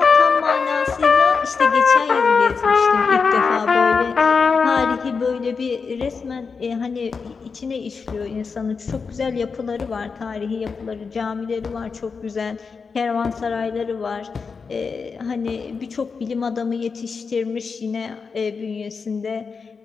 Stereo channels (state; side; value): quieter; right; 5.2 dB